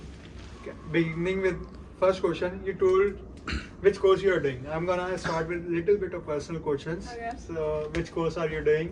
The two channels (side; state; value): both; identical; correlation 1.00